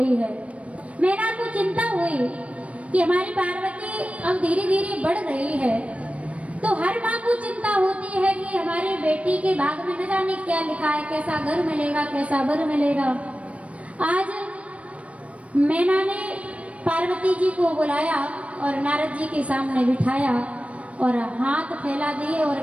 है। मैना को चिंता हुई कि हमारी पार्वती अब धीरे धीरे बढ़ रही है, तो हर माँ को चिंता होती है कि हमारी बेटी के भाग में न जाने क्या लिखा है, कैसा घर मिलेगा, कैसा वर मिलेगा। आज मैना ने पार्वती जी को बुलाया और नारद जी के सामने बिठाया और हाथ फैला दिए और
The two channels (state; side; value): late; left; 0.064 ms